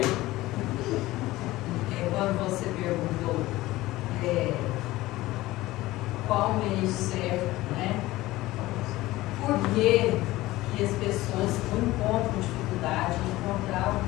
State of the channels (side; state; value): right; quieter; 17.8 dB